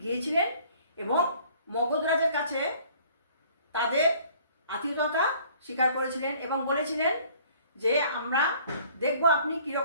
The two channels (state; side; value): inverted; both; correlation -0.55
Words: গিয়েছিলেন এবং মগধ রাজের কাছে তাদের আতিথ্যতা স্বীকার করেছিলেন এবং বলেছিলেন যে আমরা দেখব আপনি